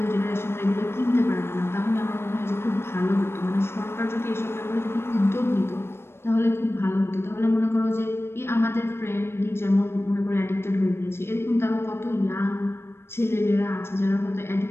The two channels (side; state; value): right; late; 0.12 ms